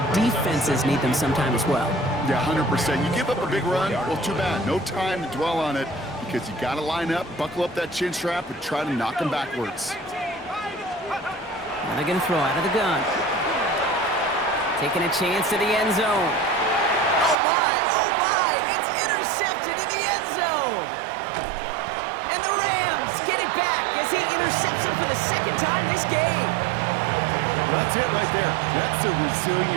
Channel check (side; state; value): left; drops out; at 17.4 s